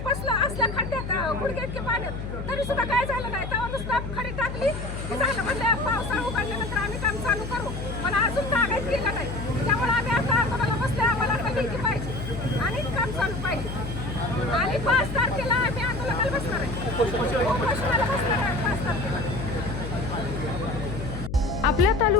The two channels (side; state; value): left; noise; hum, 7 dB below the sound